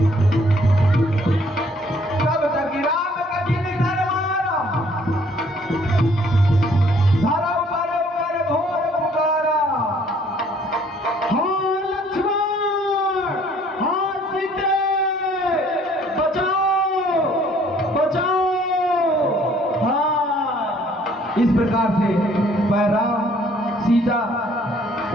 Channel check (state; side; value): normal; both; correlation 0.60